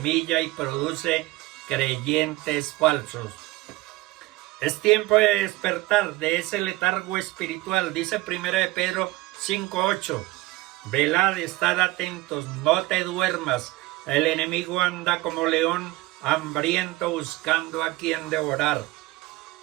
y produce creyentes falsos. Es tiempo de despertar de ese letargo espiritual, dice 1 de Pedro 5:8. Velad, estad atentos, no te duermas. El enemigo anda como león hambriento buscando a quien devorar.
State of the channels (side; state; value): left; quieter; 19.4 dB